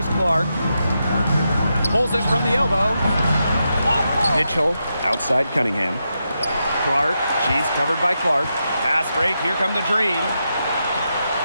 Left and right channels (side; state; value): both; inverted; correlation -0.85